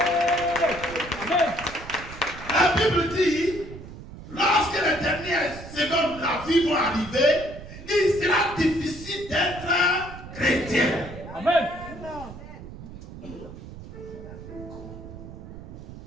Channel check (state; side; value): noise; right; rumble, 14 dB below the sound